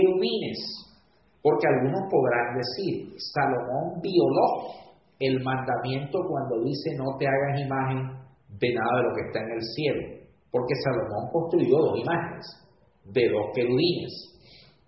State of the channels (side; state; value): both; identical; correlation 1.00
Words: porque algunos podrán decir, Salomón violó el mandamiento cuando dice no te hagas imagen de nada de lo que está en el cielo, porque Salomón construyó dos imágenes de dos querubines.